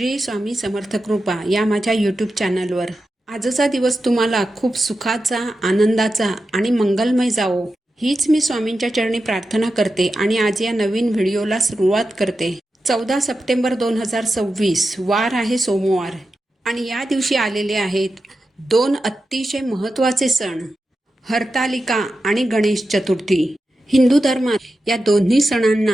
स्वामी समर्थ कृपा या माझ्या यूट्यूब चॅनलवर. आजचा दिवस तुम्हाला खूप सुखाचा, आनंदाचा आणि मंगलमय जावो हीच मी स्वामींच्या चरणी प्रार्थना करते आणि आज या नवीन व्हिडिओला सुरुवात करते. 14 सप्टेंबर 2026 वार आहे सोमवार आणि या दिवशी आलेले आहेत दोन अतिशय महत्त्वाचे सण, हरतालिका आणि गणेश चतुर्थी. हिंदू धर्मात या दोन्ही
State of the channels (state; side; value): normal; both; correlation 0.91